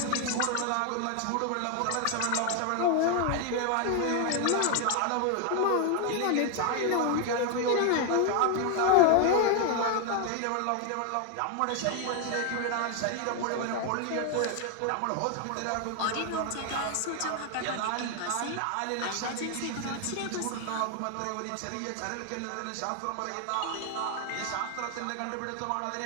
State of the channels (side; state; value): both; different; correlation 0.01